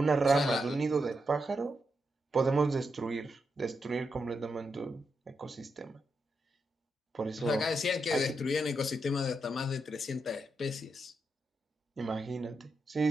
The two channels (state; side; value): normal; both; correlation 0.84